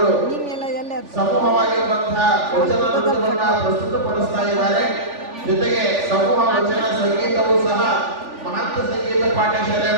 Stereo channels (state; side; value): late; left; 3.4 ms